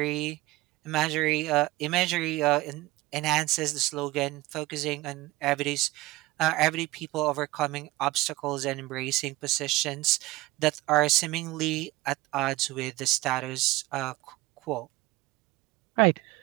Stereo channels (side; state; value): left; quieter; 18.9 dB